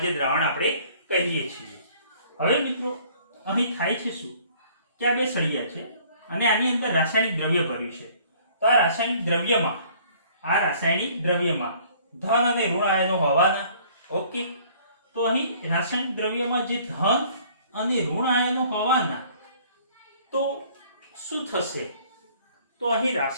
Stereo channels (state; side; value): inverted; both; correlation -0.56